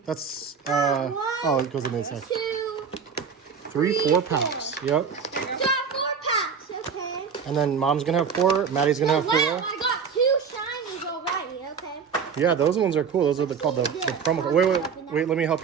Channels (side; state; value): left; quieter; 6.3 dB